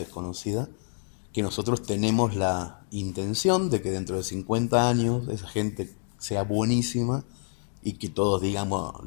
que nosotros tenemos la intención de que dentro de 50 años esa gente sea buenísima y que todos, digamos,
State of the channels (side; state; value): right; silent; digital silence